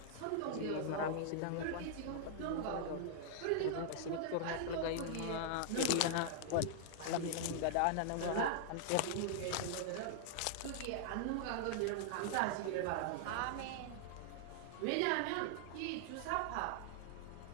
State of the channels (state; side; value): different; both; correlation -0.01